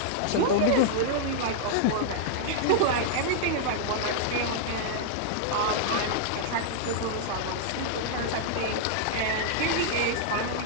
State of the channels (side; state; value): both; different; correlation -0.01